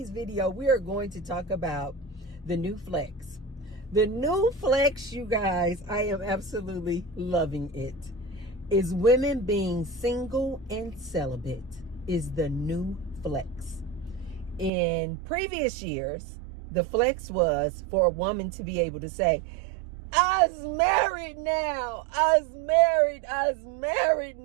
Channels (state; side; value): drops out; left; at 14.7 s